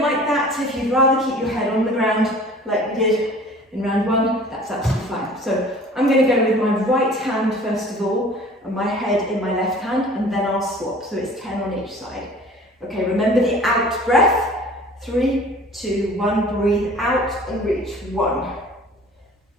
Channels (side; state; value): both; normal; correlation 0.47